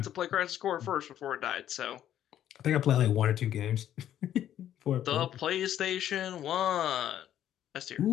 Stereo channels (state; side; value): quieter; right; 11.2 dB